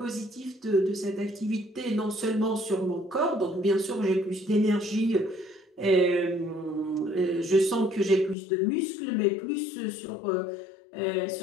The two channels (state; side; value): drops out; right; at 8.3 s